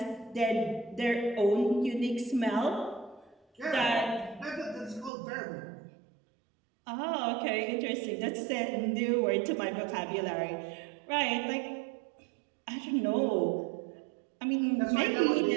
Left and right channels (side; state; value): left; drops out; at 5.1 s